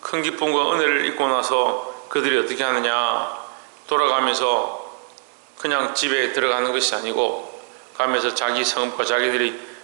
큰 기쁨과 은혜를 입고 나서 그들이 어떻게 하느냐, 돌아가면서 그냥 집에 들어가는 것이 아니고 가면서 자기 성읍과 자기들이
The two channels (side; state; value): left; silent; 55 dB below the other